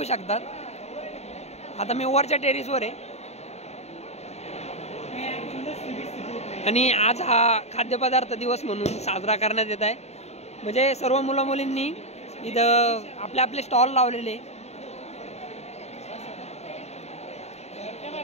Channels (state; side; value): late; right; 0.31 ms